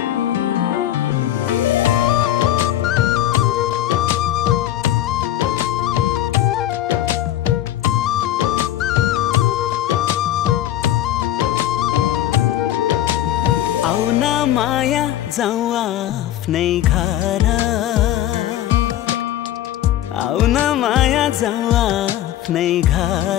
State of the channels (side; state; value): right; quieter; 12.6 dB